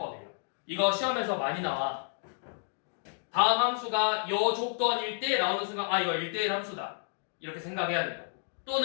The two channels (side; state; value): right; silent; 57 dB below the other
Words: 이거 시험에서 많이 나와. 다음 함수가 요 조건 1대1 나오는 순간 아 이거 1대1 함수다. 이렇게 생각해야 된다.